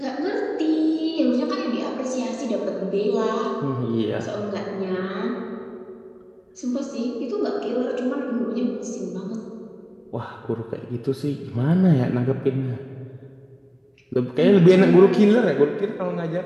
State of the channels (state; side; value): identical; both; correlation 1.00